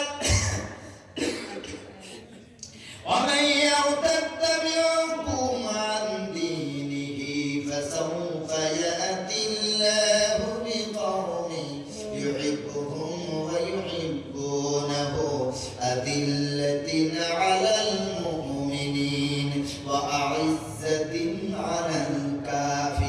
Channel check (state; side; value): identical; both; correlation 1.00